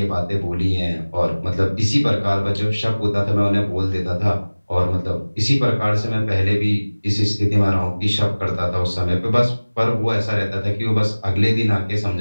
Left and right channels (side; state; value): both; inverted; correlation -1.00